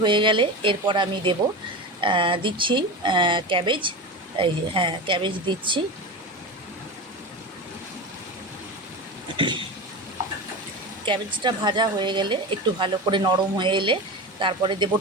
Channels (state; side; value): normal; both; correlation 0.25